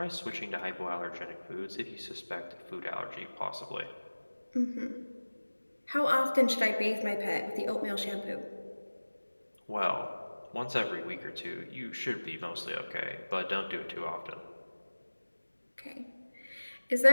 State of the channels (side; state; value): both; inverted; correlation -1.00